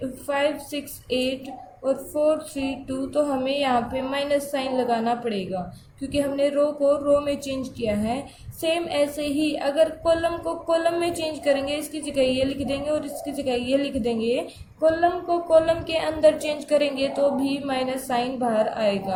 5 6 8 और 4 3 2, तो हमें यहाँ पे माइनस साइन लगाना पड़ेगा क्योंकि हमने रो को रो में चेंज किया है। सेम ऐसे ही अगर कॉलम को कॉलम में चेंज करेंगे, इसकी जगह ये लिख देंगे और इसकी जगह ये लिख देंगे, कॉलम को कॉलम के अंदर चेंज करेंगे तो भी माइनस साइन बाहर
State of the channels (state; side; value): identical; both; correlation 1.00